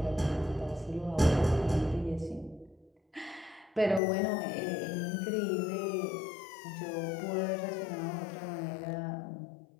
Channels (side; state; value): right; drops out; at 4.0 s